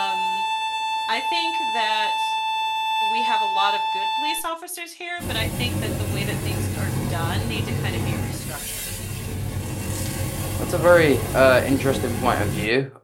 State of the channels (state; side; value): identical; both; correlation 1.00